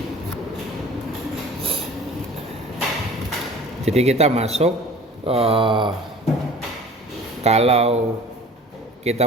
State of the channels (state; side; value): normal; both; correlation 0.45